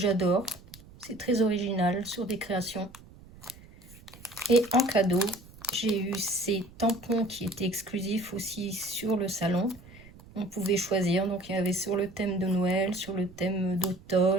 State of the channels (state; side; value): noise; right; rumble, 21 dB below the sound